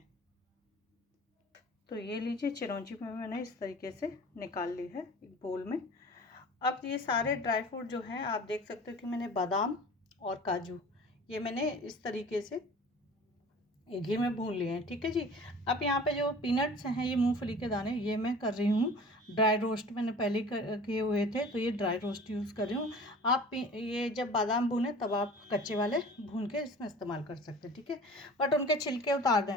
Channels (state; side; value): normal; both; correlation 0.42